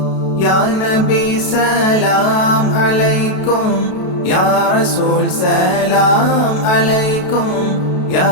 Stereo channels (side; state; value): right; late; 32 ms